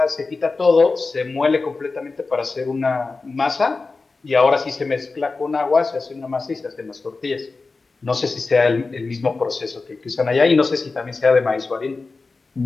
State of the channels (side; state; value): right; quieter; 3.9 dB